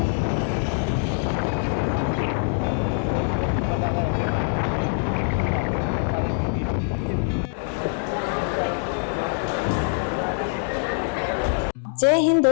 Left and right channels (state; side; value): silent; right; 63 dB below the other